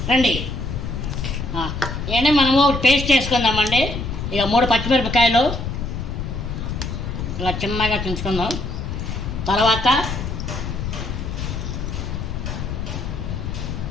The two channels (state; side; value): noise; left; rumble, 4 dB below the sound